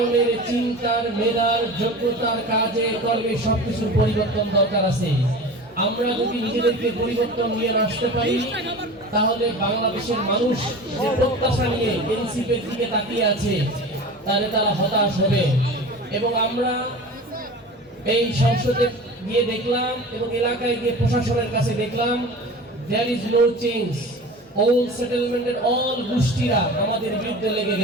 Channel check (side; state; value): both; normal; correlation 0.35